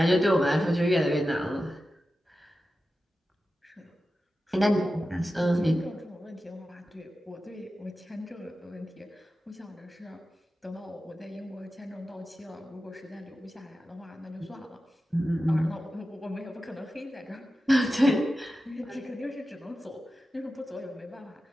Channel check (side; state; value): both; normal; correlation 0.93